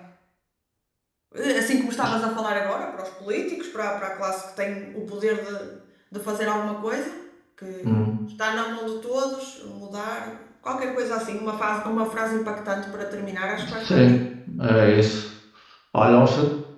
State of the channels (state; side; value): identical; both; correlation 1.00